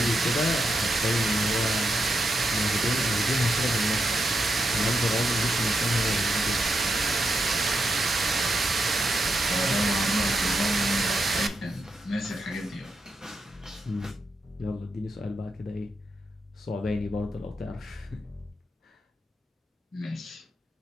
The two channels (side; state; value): both; normal; correlation 0.84